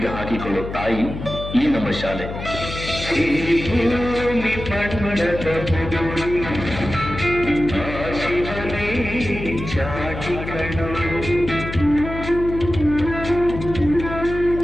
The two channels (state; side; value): noise; left; hum, 8 dB below the sound